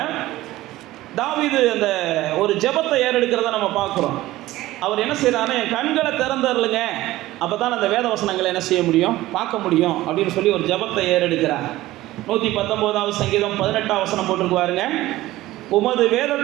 தாவீது அந்த ஒரு ஜெபத்தை ஏறெடுக்கிறத நம்ம பார்க்குறோம். அவர் என்ன செய்யறாருன்னா, என் கண்களை திறந்தருளுங்க, அப்போ தான் அந்த வேத வசனங்களை என்ன செய்ய முடியும், பார்க்க முடியும் அப்படின்னு சொல்லி ஒரு ஜெபத்தை ஏறெடுக்கிறார். 119வது சங்கீதம் 18வது வசனம் போட்டிருக்குவாருங்க. உமது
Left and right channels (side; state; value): left; quieter; 16.7 dB